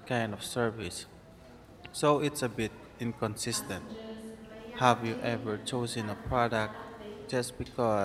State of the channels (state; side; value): identical; both; correlation 1.00